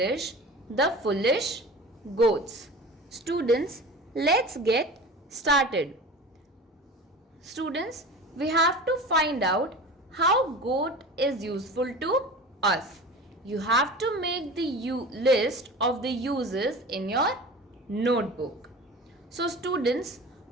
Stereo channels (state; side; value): normal; both; correlation 0.35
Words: The Foolish Goats. Students, let's get started. Students, we have to find out how goat is useful to us. You have to make the list of the uses in your notebook. So students,